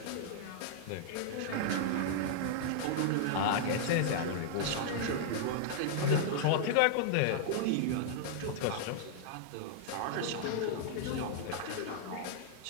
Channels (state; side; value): different; both; correlation -0.01